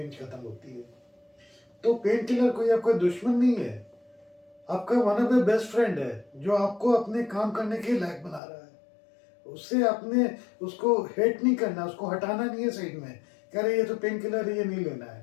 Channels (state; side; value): drops out; right; at 8.4 s